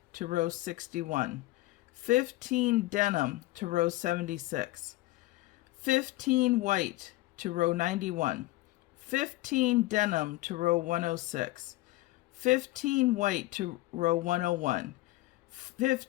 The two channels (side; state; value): right; quieter; 18.7 dB